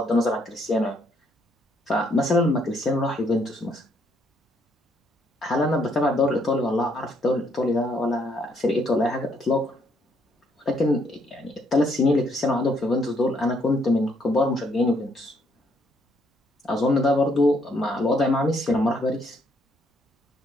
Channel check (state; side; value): normal; both; correlation 0.70